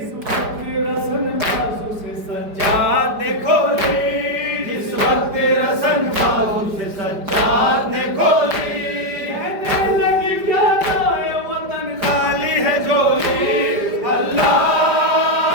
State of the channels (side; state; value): left; late; 5.0 ms